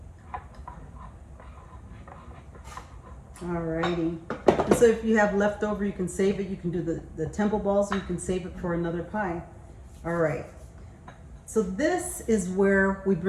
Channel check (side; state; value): both; identical; correlation 1.00